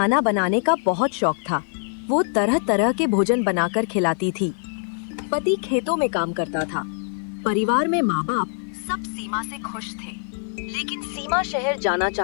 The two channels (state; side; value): silent; right; digital silence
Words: बनाने का बहुत शौक था। वो तरह तरह के भोजन बनाकर खिलाती थी। पति खेतों में काम करता था। परिवार में माँ बाप सब सीमा से खुश थे, लेकिन सीमा शहर जाना